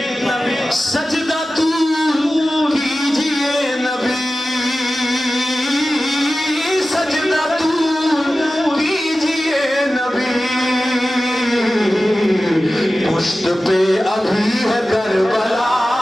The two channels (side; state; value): both; normal; correlation 0.95